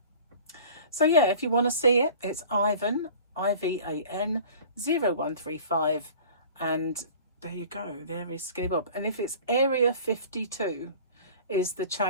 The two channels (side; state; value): both; inverted; correlation -0.44